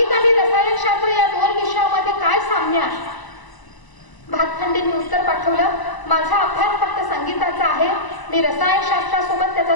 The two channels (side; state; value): right; late; 1.0 ms